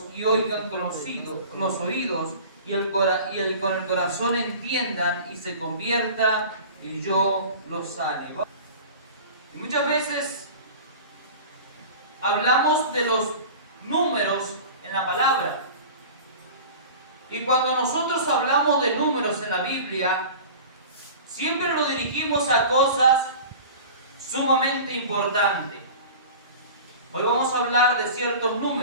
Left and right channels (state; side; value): inverted; both; correlation -0.38